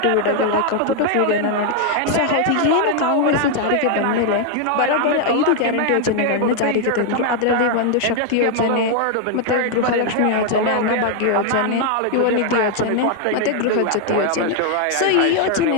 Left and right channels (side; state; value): both; different; correlation 0.00